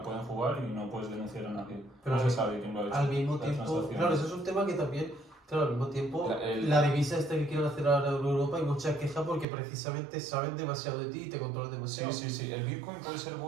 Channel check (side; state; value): left; drops out; at 9.5 s